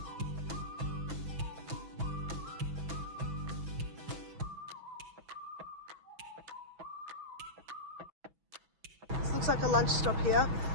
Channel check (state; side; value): late; left; 6.1 ms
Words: looks like a lunch stop here.